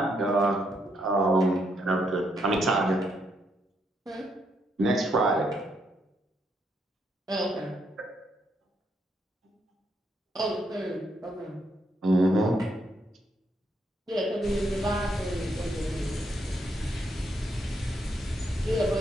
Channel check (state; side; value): normal; both; correlation 0.76